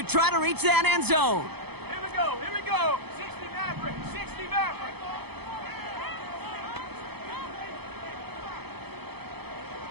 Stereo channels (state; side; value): late; left; 0.98 ms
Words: try to reach that end zone. Here we go, here we go. 60 Maverick, 60 Maverick.